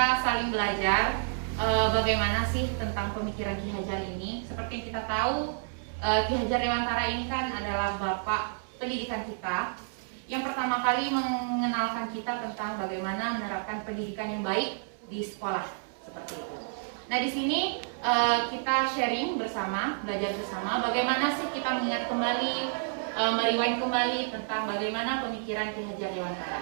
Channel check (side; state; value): left; silent; digital silence